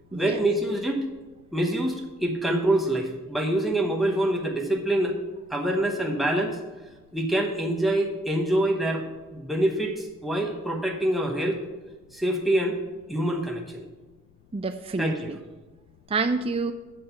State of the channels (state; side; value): noise; left; rumble, 30 dB below the sound